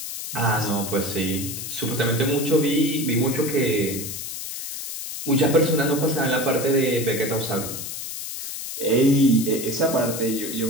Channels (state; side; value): noise; left; hiss, 7 dB below the sound